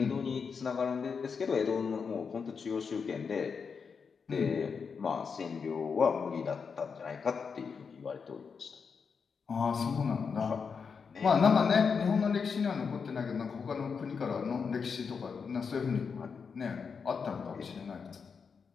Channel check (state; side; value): quieter; right; 5.8 dB